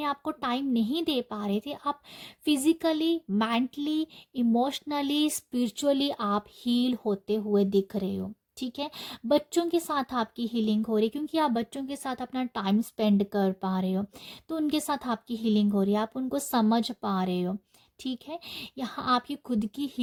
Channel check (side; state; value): both; identical; correlation 1.00